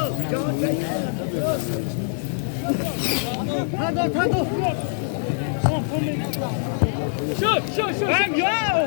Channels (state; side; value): silent; right; digital silence